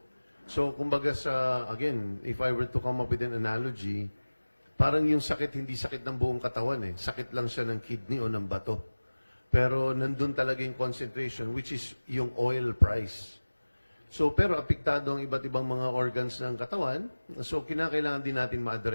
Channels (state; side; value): inverted; both; correlation -1.00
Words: So, kumbaga again, if I were to come up with an analogy, parang yung sakit, hindi sakit ng buong katawan eh. Sakit lang siya ng kidney o ng bato. Pero nandun talaga yung concentration, which is yung oil price. So, pero apektado ang iba't ibang mga organs ng katawan. So, kinakailangan din natin